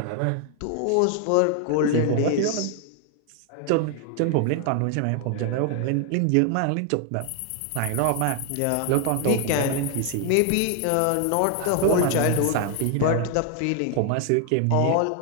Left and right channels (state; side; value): different; both; correlation 0.00